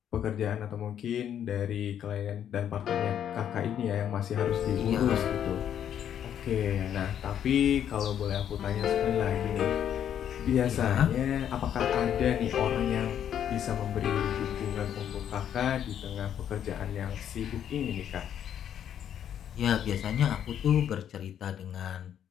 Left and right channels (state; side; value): quieter; right; 9.6 dB